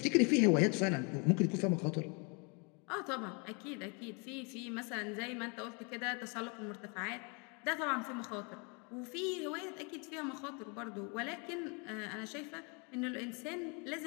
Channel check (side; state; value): right; quieter; 33.5 dB